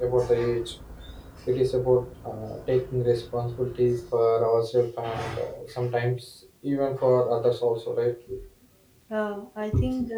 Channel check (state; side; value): identical; both; correlation 1.00